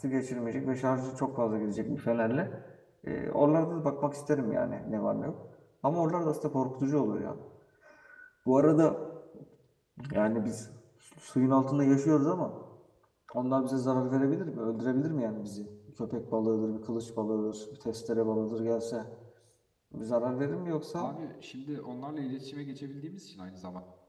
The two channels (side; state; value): both; identical; correlation 1.00